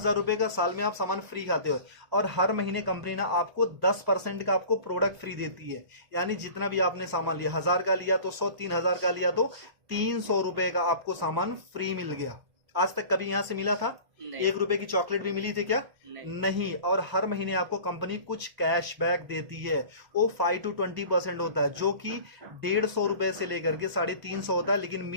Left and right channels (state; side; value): late; left; 1.0 ms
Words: रुपए का साल में आप सामान फ्री खाते हो। और हर महीने कंपनी ना आपको 10% का आपको प्रोडक्ट फ्री देती है। यानी जितना भी आपने सामान लिया, 1,000 का लिया तो 100, 3,000 का लिया तो 300 रुपए का आपको सामान फ्री मिल गया। आज तक कभी यहां से मिला था? नहीं। 1 रुपए की चॉकलेट भी मिली थी क्या? नहीं। और हर महीने आपको कंपनी कुछ कैशबैक देती है। वो 5 to 20% होता है, जो कि 150 रुपए से लेकर के 350 होता है, लेकिन